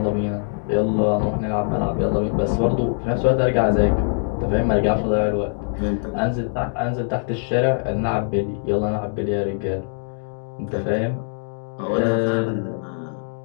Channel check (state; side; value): silent; right; digital silence